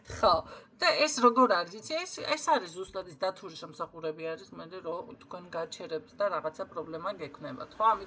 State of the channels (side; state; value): both; identical; correlation 1.00